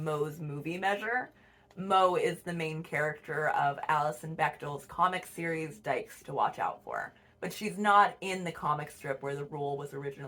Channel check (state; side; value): identical; both; correlation 1.00